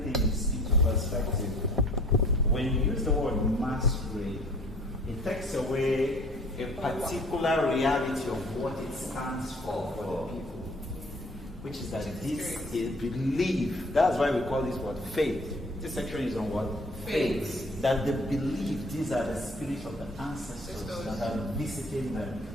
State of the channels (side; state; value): both; normal; correlation 0.51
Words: things into perspective, when you use the word masquerade, it takes away a particular reality of what it stands for the people, which is that this is belief. That's why we call this word faith. This section is on what? Faith. That they believe these are the spirits of the ancestors that are visiting them.